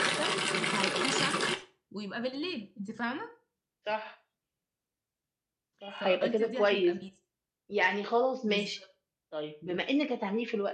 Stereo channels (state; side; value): identical; both; correlation 1.00